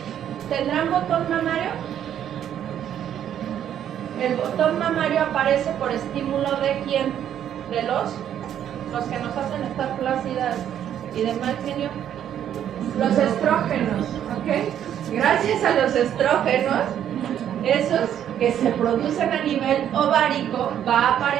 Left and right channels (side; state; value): left; quieter; 10.1 dB